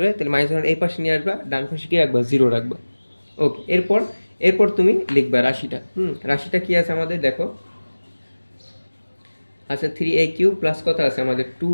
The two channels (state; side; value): inverted; both; correlation -1.00